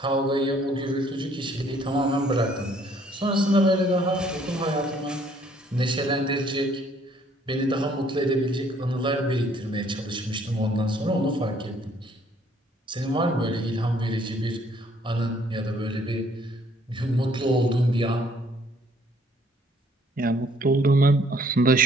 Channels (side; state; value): both; normal; correlation 0.62